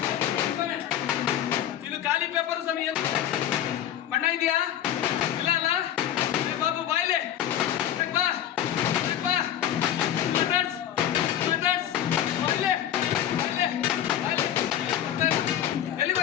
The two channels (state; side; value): quieter; right; 10.8 dB